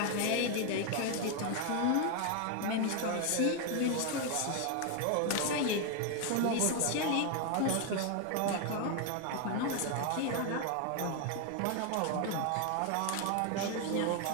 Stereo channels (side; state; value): both; different; correlation 0.01